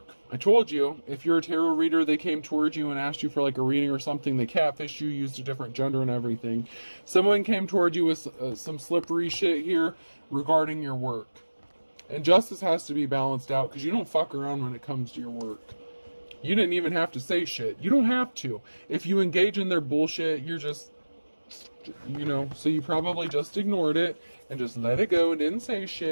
I told you, if you're a tarot reader, they came towards you and asked you for like a reading or something. They catfished you, used a different gender and everything. Someone came toward you with some slippery shit here regarding your work. And justice has to be balanced out because you don't fuck around when it comes to your work. You didn't even have to say shit. You don't have to. If you engage in their bullshit, you're just, so you probably just ignored it and just let it go and didn't say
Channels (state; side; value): inverted; both; correlation -1.00